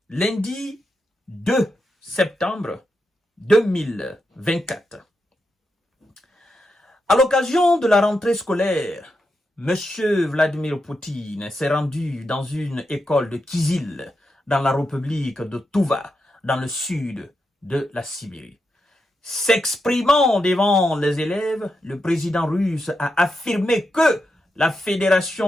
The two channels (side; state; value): both; normal; correlation 0.86